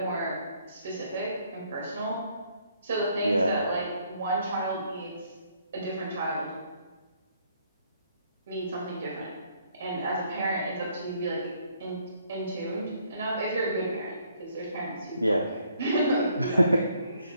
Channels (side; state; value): both; inverted; correlation -0.67